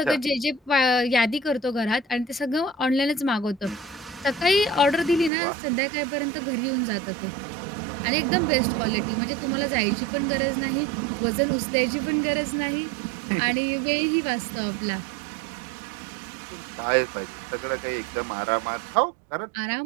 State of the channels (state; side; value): drops out; left; at 5.3 s